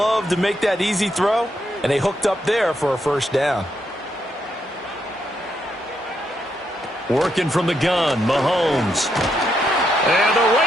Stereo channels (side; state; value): both; normal; correlation 0.79